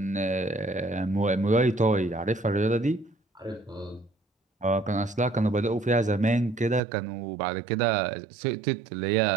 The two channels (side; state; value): left; drops out; at 6.8 s